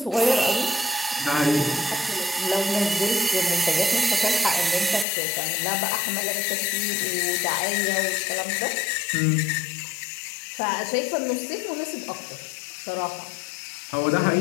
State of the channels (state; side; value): drops out; right; at 5.1 s